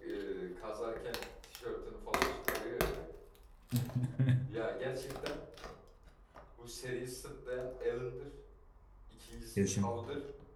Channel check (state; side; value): identical; both; correlation 1.00